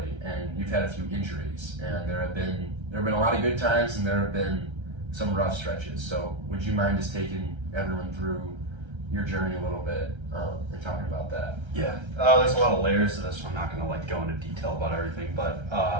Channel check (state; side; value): late; left; 1.3 ms